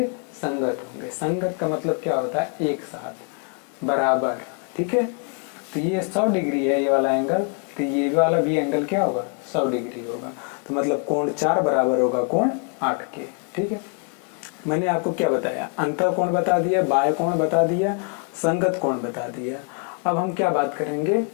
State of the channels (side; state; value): right; quieter; 37.4 dB